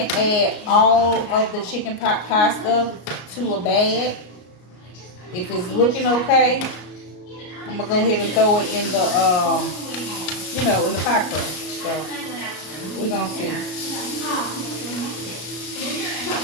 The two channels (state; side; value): late; right; 33 ms